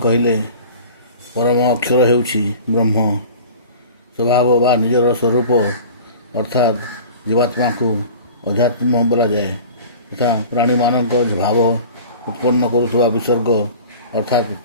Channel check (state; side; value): inverted; both; correlation -0.41